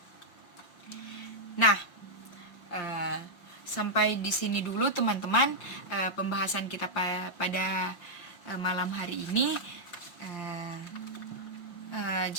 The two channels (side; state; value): right; late; 5.8 ms